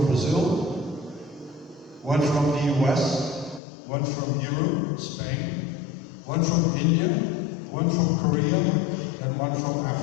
Brazil, one from the US, one from Europe, Spain, one from India, one from Korea, and one from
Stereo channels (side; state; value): right; drops out; at 3.6 s